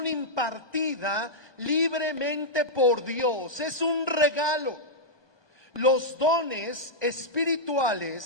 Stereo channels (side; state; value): right; late; 1.2 ms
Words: impartida libremente por Dios. Es un regalo. Los dones